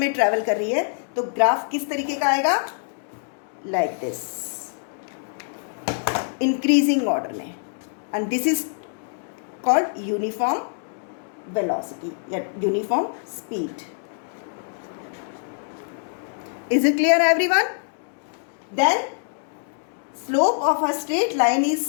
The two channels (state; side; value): silent; right; 62 dB below the other